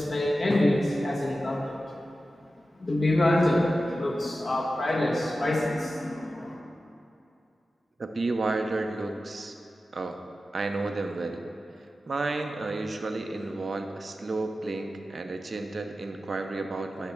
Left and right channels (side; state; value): both; normal; correlation 0.93